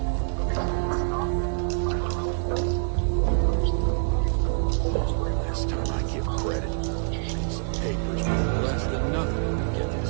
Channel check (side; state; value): left; silent; digital silence